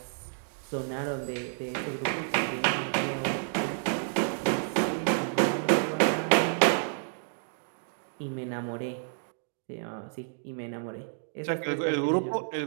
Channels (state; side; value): silent; left; digital silence